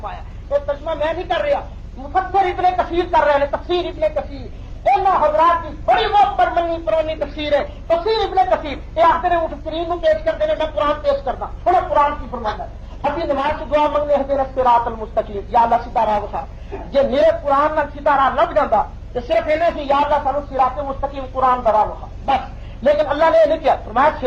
تو ترجمہ میں نہیں کر رہا، مفسر ابن کثیر کر رہے ہیں، تفسیر ابن کثیر ان حضرات کی بڑی بہت پرمنی پرانی تفسیر ہے، تفسیر ابن کثیر یہ آخر مفسرین کو پیش کرتے ہیں، میں قرآن پیش کرتا تھوڑا قرآن کی فرمانا ہے۔ ابھی نماز کی دعا منگنے اہدنا الصراط المستقیم، یا اللہ سیدھا راہ دکھا، جی میرے قرآن نال سیدھا راہ لگ جاتا تو صرف انہیں سے یا اللہ سانو صراط مستقیم قرآن دا راہ دکھا بس، لیکن اللہ نے یہ نہیں کیا، فرمایا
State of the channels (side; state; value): both; identical; correlation 1.00